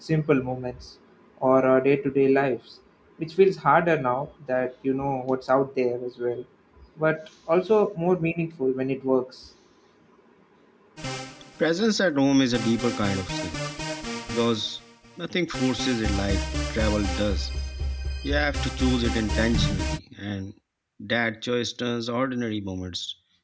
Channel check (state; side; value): identical; both; correlation 1.00